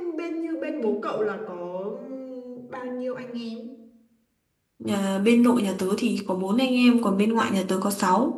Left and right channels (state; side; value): identical; both; correlation 1.00